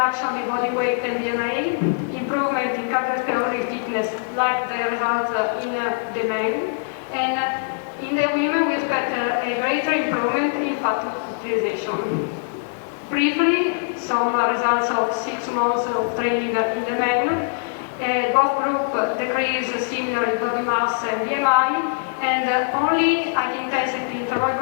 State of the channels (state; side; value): silent; right; digital silence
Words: in body weight and BMI, improvement in cardiovascular fitness, like the results in the men, and in the women we expect a greater improvement in fat utilization. Briefly, some results of 6 months of training in the men. Both groups decrease similarly body mass and BMI, and only high-intensity interval